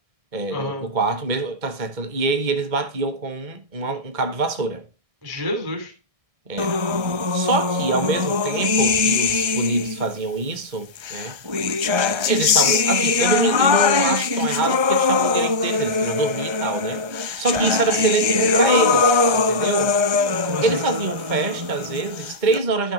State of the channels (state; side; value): late; left; 1.3 ms